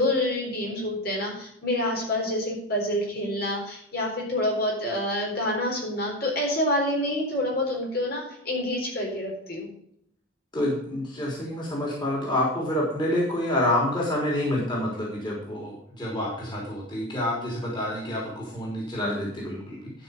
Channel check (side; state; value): both; normal; correlation 0.22